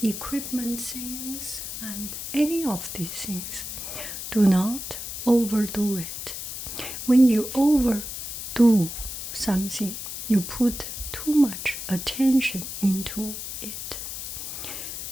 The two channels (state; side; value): noise; left; hiss, 7 dB below the sound